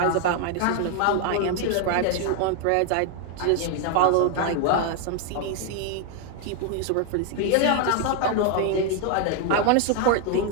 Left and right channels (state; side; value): different; both; correlation 0.00